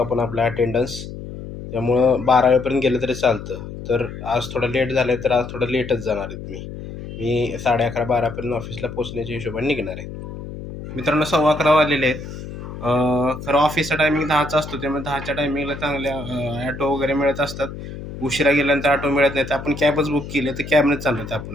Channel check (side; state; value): left; noise; hum, 10 dB below the sound